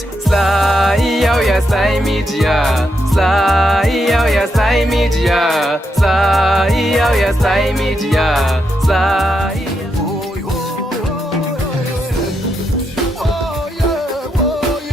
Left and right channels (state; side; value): normal; both; correlation 0.82